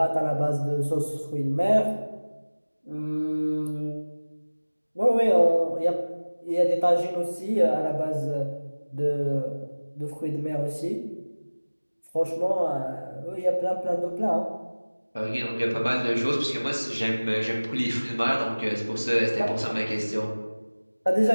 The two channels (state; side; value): inverted; both; correlation -1.00